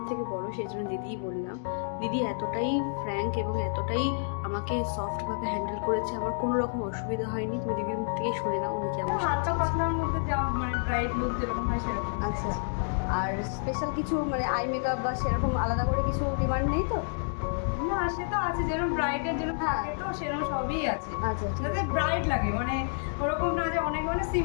থেকে বড়, সেই জন্য দিদিই বললাম। দিদি এতটাই ফ্র্যাঙ্ক এবং এতটাই আমাকে সফটভাবে হ্যান্ডেল করেছে, আমার কোনো রকম অসুবিধা হয়নি। তুমি দিদির মুখ থেকে শুনে নাও উনি কেমন সাজিয়েছিল। আচ্ছা, আর স্পেশাল কিছু আই মেকআপ বা সেরকম আলাদা করে কিছু ডিমান্ড নেই তো? না, সে তো আছে, যেরকম ব্রাইডের জন্য থাকে তো সেরকম সবই আছে। আচ্ছা, যাতে ব্রাইড লাগে, ওরকম না যে অনেক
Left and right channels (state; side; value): silent; right; digital silence